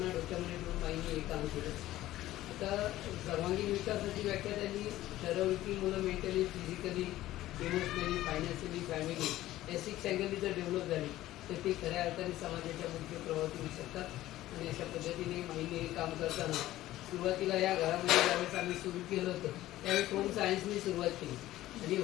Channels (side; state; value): right; quieter; 15.2 dB